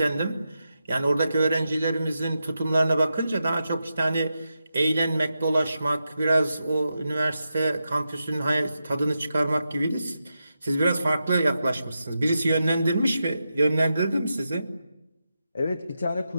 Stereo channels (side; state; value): both; inverted; correlation -0.88